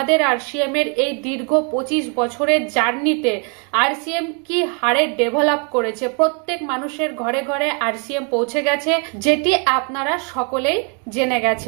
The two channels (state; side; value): quieter; left; 37.1 dB